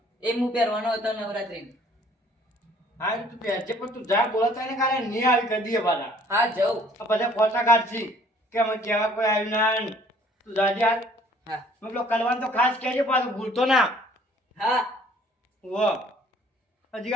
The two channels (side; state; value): both; normal; correlation 0.57